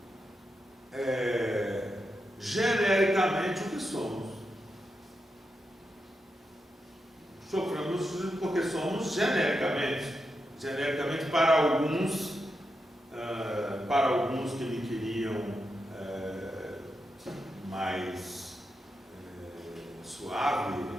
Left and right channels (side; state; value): both; normal; correlation 0.86